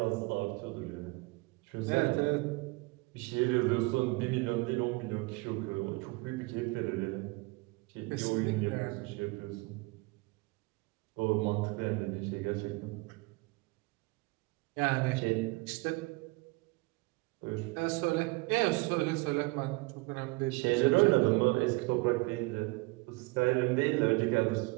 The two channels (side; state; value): left; quieter; 25.1 dB